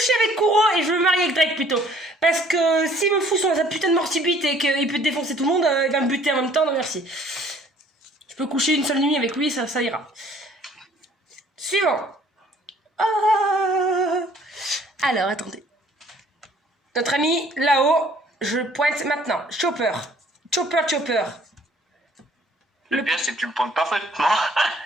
avec Kuro et je vais me marier avec Drake plutôt. Parce que s'il me fout sa putain de mort subite et qu'il peut défoncer tout le monde, il va me buter en même temps. Non, merci. Je peux coucher une seule nuit avec lui, ça ira. Suivant. Ah. Alors, attendez. Notre ami là-haut, je pointe maintenant. Chopper. Chopper. Le pire, c'est que tu le pointes parfaitement.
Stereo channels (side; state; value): both; normal; correlation 0.57